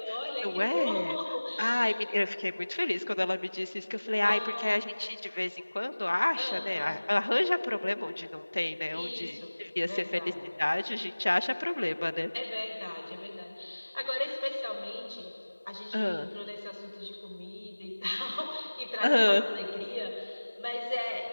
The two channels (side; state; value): both; inverted; correlation -1.00